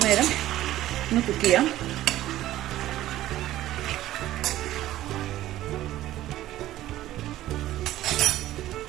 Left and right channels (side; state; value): left; quieter; 14.5 dB